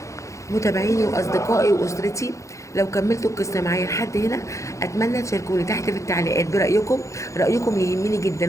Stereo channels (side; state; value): right; late; 0.15 ms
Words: متابعيني واصدقائي واسرتي، لو كملتوا القصه معايا لحد هنا اتمنى تشاركوني تحت في التعليقات برايكم. رايكم يهمني